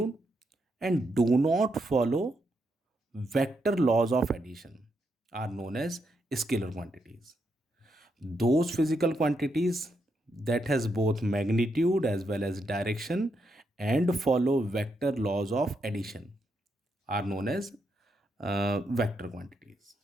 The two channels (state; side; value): normal; both; correlation 0.81